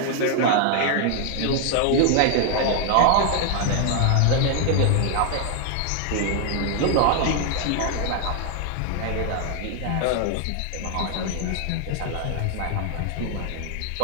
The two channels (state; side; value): different; both; correlation 0.00